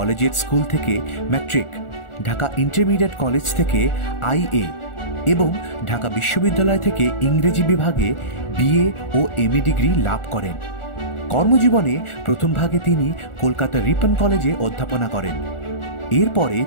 স্কুল থেকে ম্যাট্রিক, ঢাকা ইন্টারমিডিয়েট কলেজ থেকে আইএ এবং ঢাকা বিশ্ববিদ্যালয় থেকে ইংরেজি বিভাগে বিএ ও এমএ ডিগ্রি লাভ করেন। কর্মজীবনে প্রথম ভাগে তিনি কলকাতা রিপন কলেজে অধ্যাপনা করেন। এরপরে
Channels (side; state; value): right; late; 1.4 ms